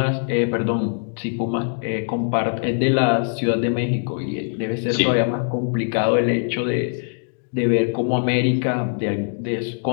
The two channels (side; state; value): right; silent; digital silence